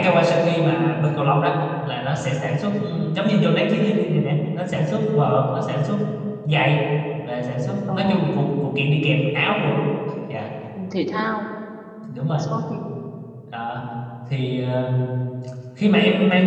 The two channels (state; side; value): identical; both; correlation 1.00